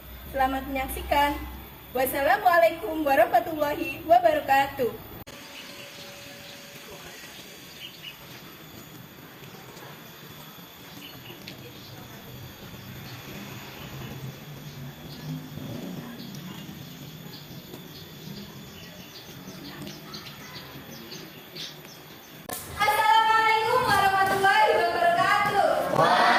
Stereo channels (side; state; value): both; identical; correlation 1.00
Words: Selamat menyaksikan. Wassalamualaikum warahmatullahi wabarakatuh.